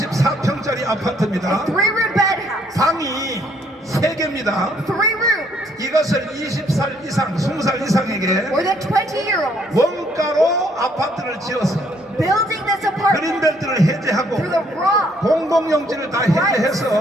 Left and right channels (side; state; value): both; normal; correlation 0.67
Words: 아파트입니다. 3-room bed house, 방이 3개입니다. 3 rooms, 이것을 20살 이상, 20살 이상에게 more than 20-year-olds, 원가로 아파트를 지어서 building this apartment 그린벨트를 해제하고 through the raw, 공공용지를 다